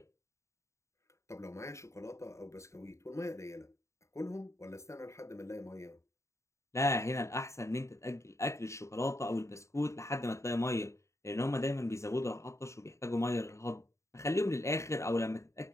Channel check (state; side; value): late; right; 0.14 ms